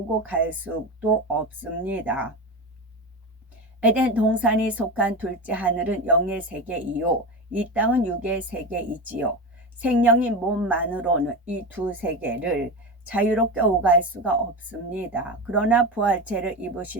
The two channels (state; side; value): normal; both; correlation 0.22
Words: 갈 수도 없습니다. 에덴 동산이 속한 둘째 하늘은 영의 세계이요 이 땅은 육의 세계이지요. 생명인 몸만으로는 이 두 세계를 자유롭게 오갈 수가 없습니다. 그러나 부활체를